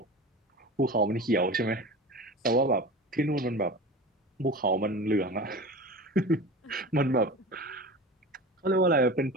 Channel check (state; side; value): normal; both; correlation 0.33